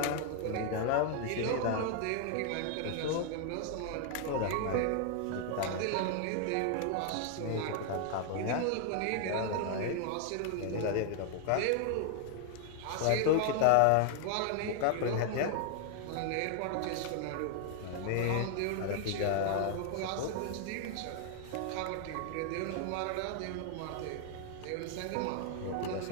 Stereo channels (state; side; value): different; both; correlation 0.00